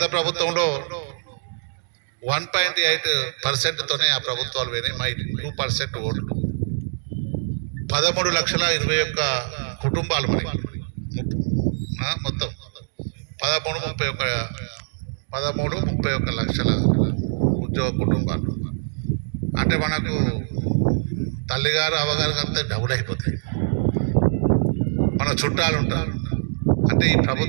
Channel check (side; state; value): left; silent; digital silence